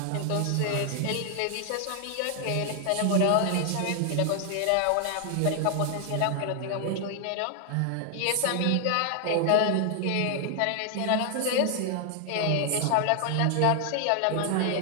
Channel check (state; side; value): different; both; correlation 0.00